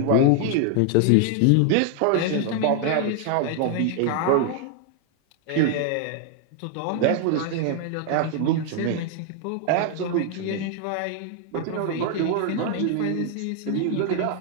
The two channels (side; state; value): both; different; correlation 0.00